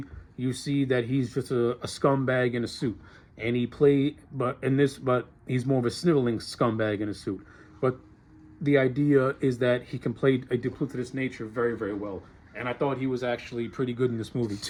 you see that he's just a scumbag in a suit, and but he's more of a sniveling scumbag in a suit. But the idea is that he can play a duplicitous nature very, very well, and I thought he was actually pretty good in this movie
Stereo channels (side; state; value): both; identical; correlation 1.00